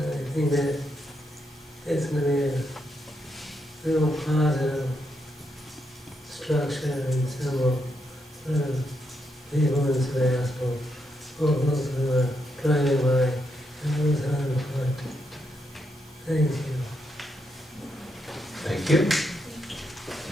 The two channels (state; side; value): normal; both; correlation 0.80